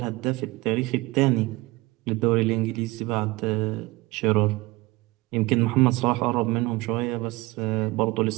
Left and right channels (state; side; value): quieter; left; 21.9 dB